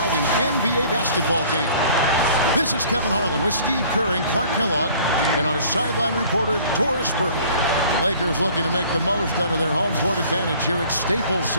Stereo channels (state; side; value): inverted; both; correlation -0.52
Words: NBA basketball game. This is Kevin Harlan with Steve Kerr and Clark Kellogg and our sideline reporter, Doris Burke. Lakers looking to make the most out of their home court advantage here at Staples